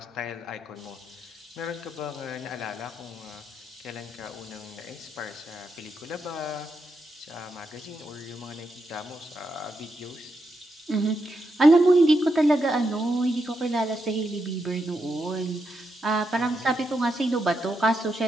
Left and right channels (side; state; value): both; normal; correlation 0.83